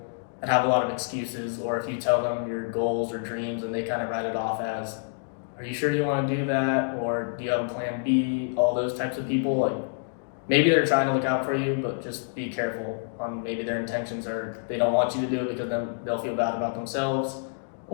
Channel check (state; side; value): silent; right; digital silence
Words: that have a lot of excuses, or if you tell them your goals or dreams and they kind of write it off as, are you sure you want to do that? Or do you have a plan B? All those types of people, like, maybe they're trying to look out for you, but just be careful on maybe their intentions are they don't want you to do it because then they'll feel bad about themselves,